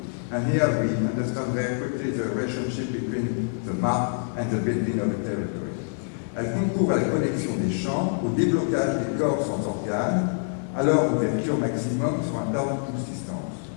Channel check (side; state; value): right; silent; digital silence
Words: And here we understand very quickly the relationship between the map and the building of the territory. Elle concourt à la connexion des champs, au déblocage des corps sans organes, à leur ouverture maximum sur un temps de subsistance.